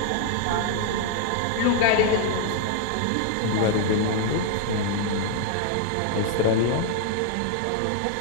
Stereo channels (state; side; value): different; both; correlation 0.00